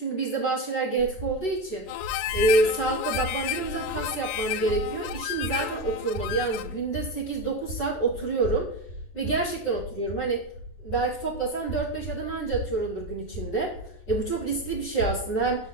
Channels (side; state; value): right; late; 14 ms